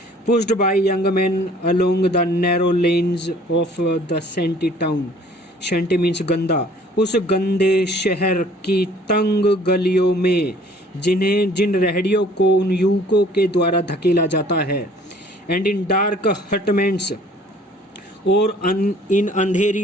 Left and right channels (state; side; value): normal; both; correlation 0.54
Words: Pushed by young man along the narrow lanes of the सेंटी टाउन, सेंटी मीन्स गंदा, उस गंदे शहर की तंग गलियों में जिन रेहड़ियों को उन युवकों के द्वारा धकेला जाता है। एंड इन डार्क हटमेंट्स, और इन